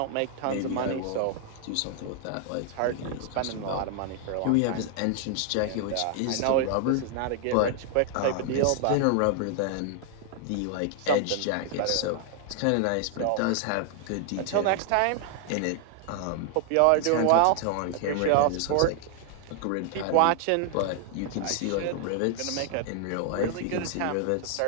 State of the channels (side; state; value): both; different; correlation 0.00